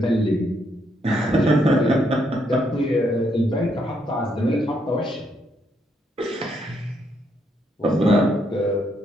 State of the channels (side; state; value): both; normal; correlation 0.75